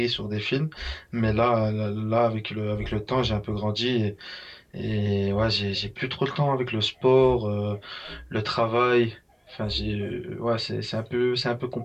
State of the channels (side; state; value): both; identical; correlation 1.00